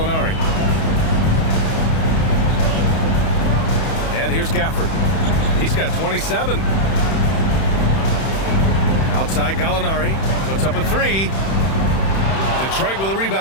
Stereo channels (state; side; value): late; right; 31 ms